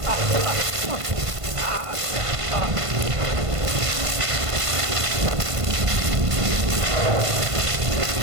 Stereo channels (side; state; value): left; late; 1.5 ms